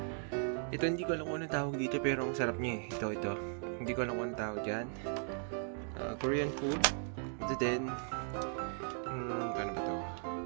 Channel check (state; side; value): silent; left; 53 dB below the other